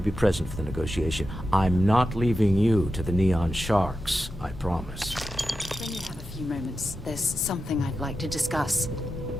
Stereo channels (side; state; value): both; normal; correlation 0.91